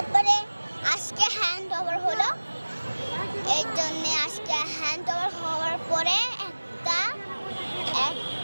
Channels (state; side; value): inverted; both; correlation -1.00